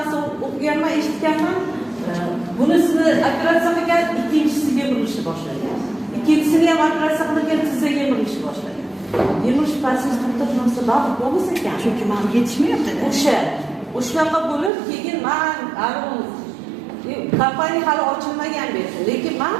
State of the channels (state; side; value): drops out; left; at 14.7 s